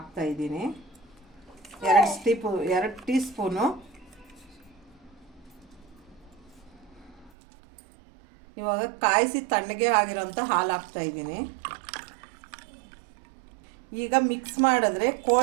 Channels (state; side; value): drops out; left; at 7.3 s